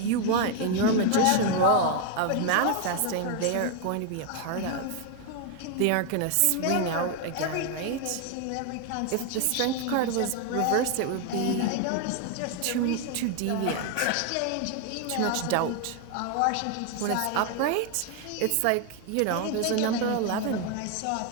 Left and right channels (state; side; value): different; both; correlation 0.01